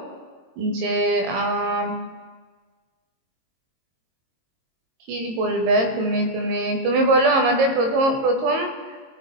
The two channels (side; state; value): left; late; 22 ms